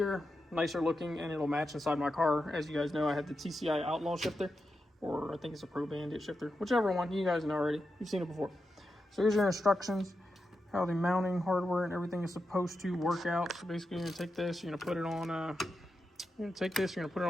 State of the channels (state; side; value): normal; both; correlation 0.88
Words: nicer looking, and it'll match inside my car. As you guys know, I have the TCI Outlaw shifter, or I think it's a Pro Bandit shifter, whichever one. You guys know already. You've seen it before. So here's your instructions, how the mounting hardware and everything is supposed to work out. So basically, you're gonna take this, you're gonna put it on. You're gonna take this, you're gonna put it